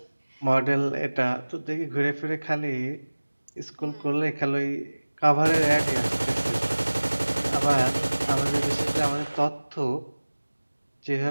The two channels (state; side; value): inverted; both; correlation -1.00